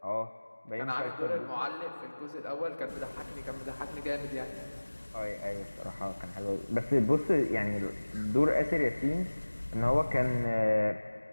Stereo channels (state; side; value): inverted; both; correlation -1.00